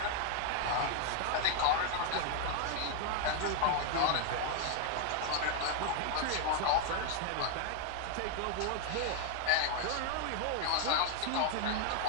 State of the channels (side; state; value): both; different; correlation 0.00